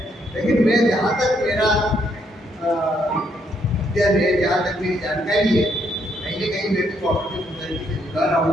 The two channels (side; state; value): both; normal; correlation 0.73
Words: लेकिन मैं जहाँ तक मेरा अध्ययन है, जहाँ तक मेरी जानकारी है, कहीं ना कहीं मैं भी कोऑपरेटिव सोसाइटी से जुड़ा रहा हूँ